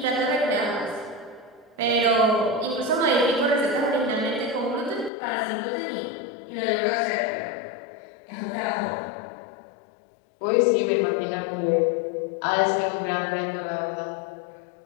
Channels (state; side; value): drops out; right; at 5.1 s